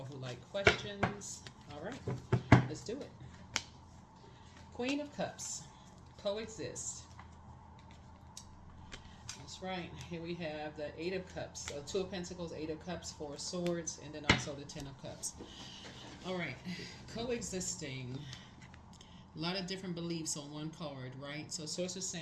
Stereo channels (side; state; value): both; identical; correlation 1.00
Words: who like questions. All right, let's do it. Queen of Cups. Coexist. That's right. Here we have the Eight of Cups. So Two of Pentacles, Eight of Cups, Four of Swords, and then also the Ten of Cups. All right. Coexisting. A lot of different beliefs on one card, right? So Source is